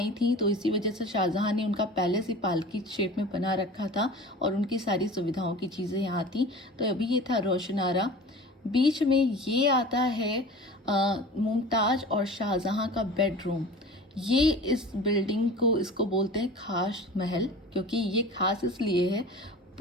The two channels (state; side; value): normal; both; correlation 0.38